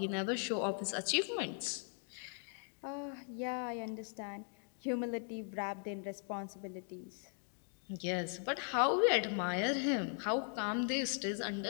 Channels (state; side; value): silent; right; 52 dB below the other